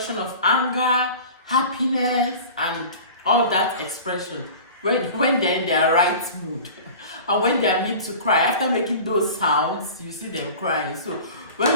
of anger, happiness, and all of that expression when they're in their right mood. And when they are made to cry, after making those sounds, you see them crying. So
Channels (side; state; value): both; inverted; correlation -0.39